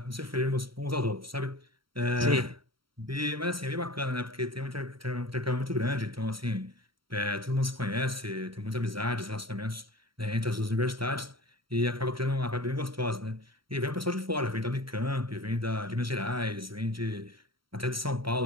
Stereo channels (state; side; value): late; left; 0.74 ms